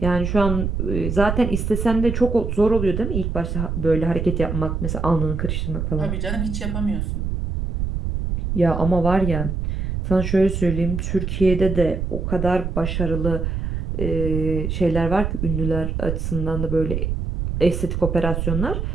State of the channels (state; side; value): noise; right; rumble, 2 dB below the sound